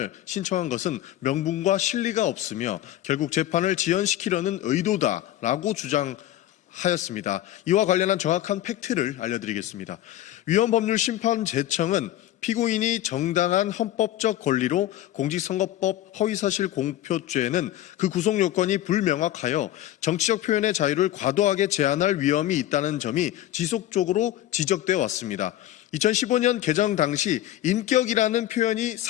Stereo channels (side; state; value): right; quieter; 13.4 dB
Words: 신청한 것은 명분과 실리가 없으며 결국 재판을 지연시키려는 의도다라고 주장하였습니다. 이와 관련한 정확한 팩트를 알려드리겠습니다. 위헌법률 심판 재청은 피고인이 정당한 헌법적 권리로 공직선거법 허위사실 공표죄는 그 구속 요건이 불명확하여 정치적 표현의 자유를 과도하게 제한할 위험이 있다는 점이 지속적으로 지적되어 왔습니다. 2015년 개정 당시 인격이라는 표현이